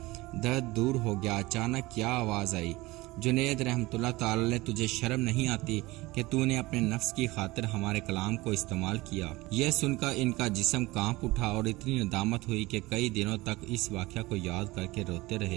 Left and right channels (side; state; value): left; quieter; 20.7 dB